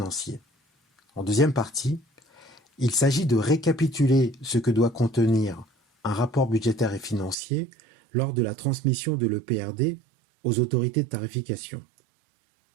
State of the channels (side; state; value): left; drops out; at 7.4 s